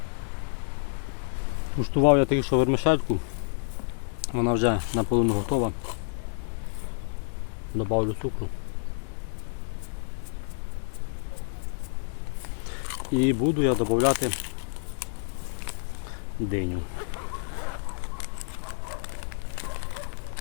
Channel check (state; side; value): silent; right; digital silence